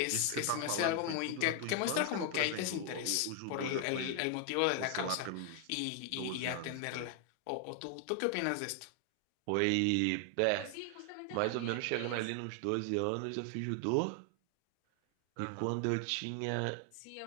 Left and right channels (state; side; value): different; both; correlation 0.00